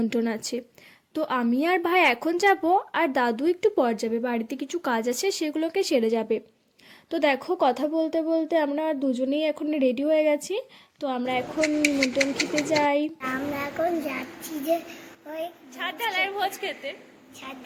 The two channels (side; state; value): both; identical; correlation 1.00